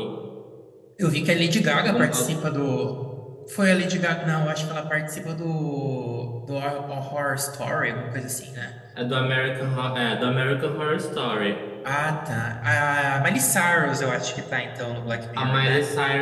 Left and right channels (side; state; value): both; identical; correlation 1.00